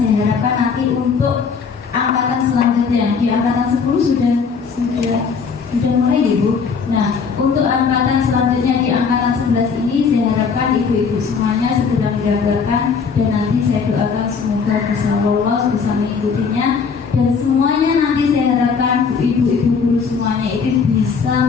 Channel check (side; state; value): right; quieter; 5.6 dB